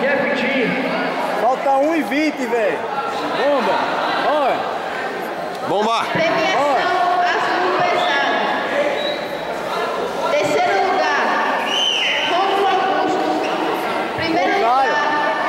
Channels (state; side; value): identical; both; correlation 1.00